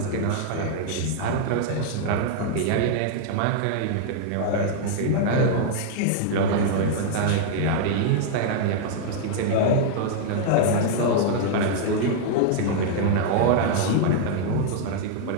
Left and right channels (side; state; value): both; different; correlation -0.01